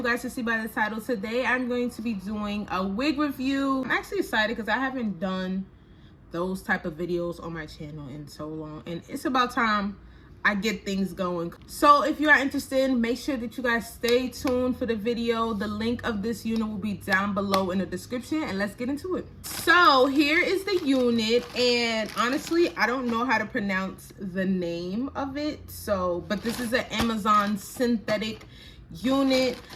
guys can see by the title, today I'm going to be doing a wig review. I'm actually excited because I haven't done those type of videos on my channel in so long, and it's about time I get things going. So if you are interested, make sure that you guys stay tuned for the video. The link of this unit will be down below in the description, and let's get into it. So here is the unit, and honestly I don't know how to pronounce the name of it, but this is an Amazon synthetic unit.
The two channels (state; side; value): identical; both; correlation 1.00